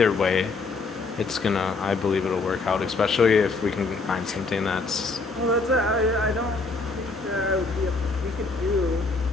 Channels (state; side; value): quieter; right; 3.8 dB